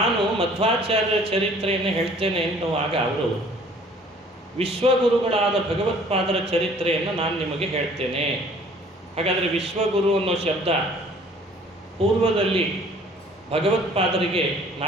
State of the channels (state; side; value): normal; both; correlation 0.54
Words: ಮಧ್ವಾಚಾರ್ಯ ಚರಿತ್ರೆಯನ್ನು ಹೇಳ್ತೇನೆ ಎನ್ನುವಾಗ ಅವರು ವಿಶ್ವಗುರುಗಳಾದ ಭಗವತ್ಪಾದರ ಚರಿತ್ರೆಯನ್ನು ನಾನು ನಿಮಗೆ ಹೇಳ್ತೇನೆ. ಹಾಗಾದರೆ ವಿಶ್ವಗುರು ಅನ್ನೋ ಶಬ್ದ ಪೂರ್ವದಲ್ಲಿ ಭಗವತ್ಪಾದರಿಗೆ